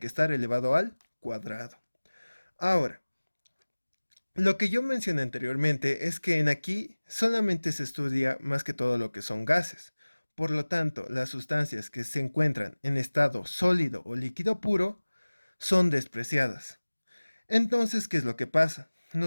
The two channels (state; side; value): inverted; both; correlation -1.00